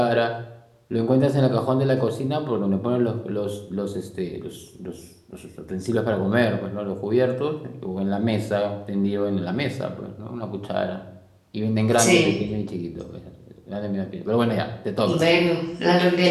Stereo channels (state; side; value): identical; both; correlation 1.00